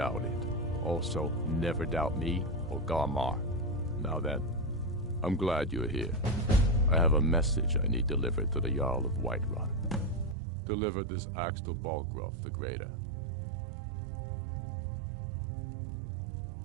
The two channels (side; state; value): left; drops out; at 10.4 s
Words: it. Also, never doubt me or Garmar. Now then, I'm glad you're here. I have a message I need delivered to the Jarl of Whiterun. Deliver this axe to Balgruuf the Greater.